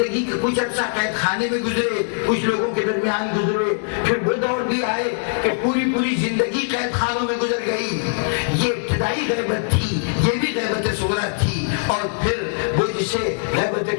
کے کچھ عرصہ قید خانے میں گزرے، کچھ لوگوں کے درمیان گزرے۔ پھر وہ دور بھی آئے کہ پوری زندگی قید خانوں میں گزر گئی۔ یہ ابتدائی غیبت تھی، یہ بھی غیبت صغریٰ تھی۔ اور پھر وہ جسے غیبت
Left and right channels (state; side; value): silent; right; digital silence